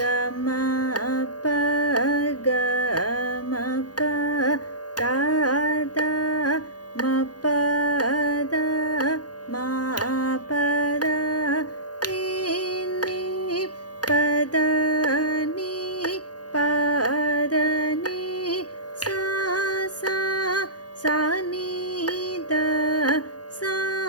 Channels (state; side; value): late; right; 0.69 ms